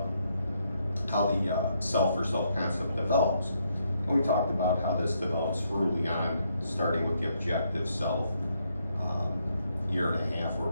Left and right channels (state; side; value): inverted; both; correlation -0.75